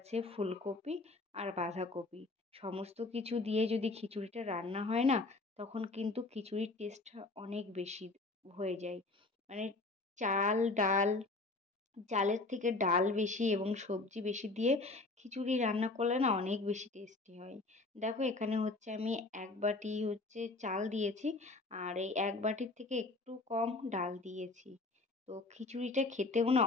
ফুলকপি আর বাঁধাকপি। সমস্ত কিছু দিয়ে যদি খিচুড়িটা রান্না হয় না তখন কিন্তু খিচুড়ির টেস্টটা অনেক বেশি হয়ে যায়। মানে চাল ডাল, চালের থেকে ডাল বেশি এবং সবজি বেশি দিয়ে খিচুড়ি রান্না করলে না অনেক বেশি টেস্টি হয়। দেখো এখানে হচ্ছে আমি 1 বাটি হচ্ছে চাল দিয়েছি আর এই 1 বাটির থেকে একটু কম ডাল দিয়েছি। তো খিচুড়িটা খেতেও না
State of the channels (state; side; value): quieter; right; 3.3 dB